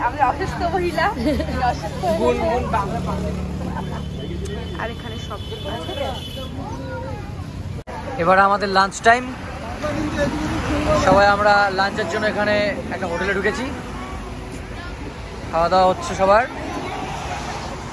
আমি অসুস্থ মহিলা, আর এখানে সব এবার আমাদের লাঞ্চ টাইম। সবাই আমরা লাঞ্চের জন্য এখানে একটা হোটেলে ঢুকেছি, খাওয়া দাওয়া হচ্ছে সবার।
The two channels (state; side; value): identical; both; correlation 1.00